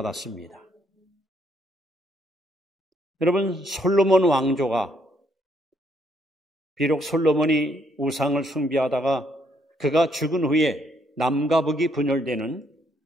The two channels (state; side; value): normal; both; correlation 0.71